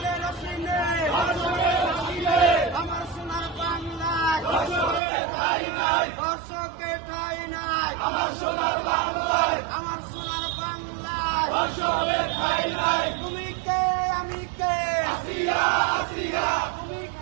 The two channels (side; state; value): left; drops out; at 5.0 s